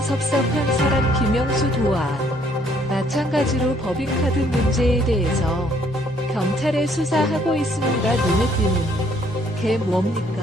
섭섭한 사람 김영수 도와 마찬가지로 법인카드 문제에 대해서 경찰에 수사하고 있습니다. 눈에 띄는 게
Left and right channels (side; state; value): both; normal; correlation 0.65